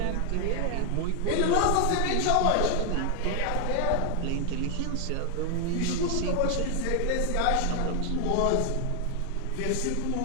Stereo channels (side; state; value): both; different; correlation 0.00